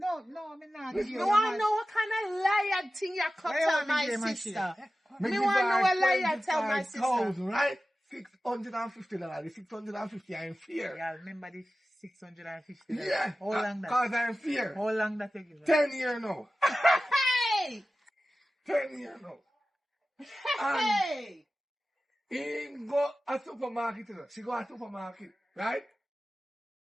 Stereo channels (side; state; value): both; normal; correlation 0.95